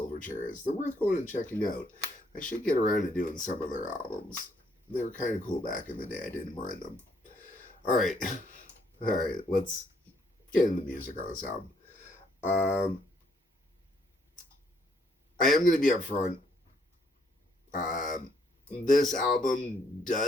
is, they're worth going and checking out. I should get around to doing some of their albums. They were kind of cool back in the day. I didn't mind them. Alright, let's get into the music on this album. I am going to be upfront. This album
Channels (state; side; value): normal; both; correlation 0.69